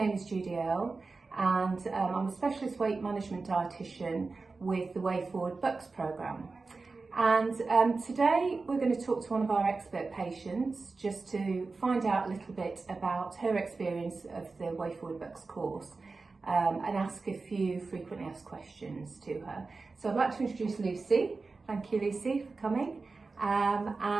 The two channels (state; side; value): quieter; left; 4.0 dB